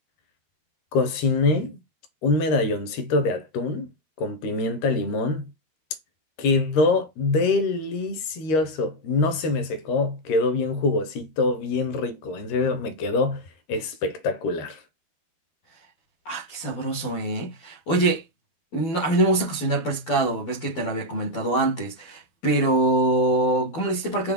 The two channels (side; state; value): right; late; 13 ms